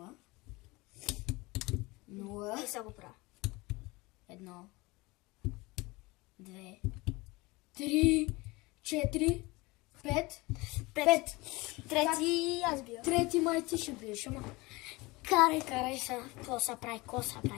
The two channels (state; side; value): quieter; right; 23.0 dB